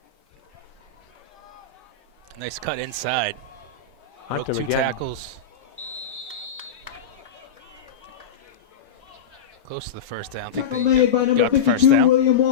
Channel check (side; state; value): right; quieter; 6.1 dB